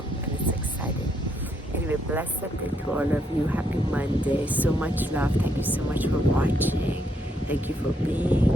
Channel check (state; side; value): normal; both; correlation 0.75